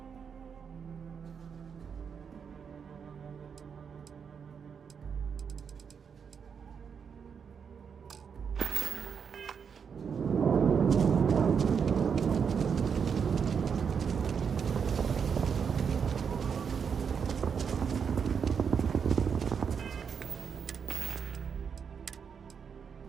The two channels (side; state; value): left; quieter; 6.6 dB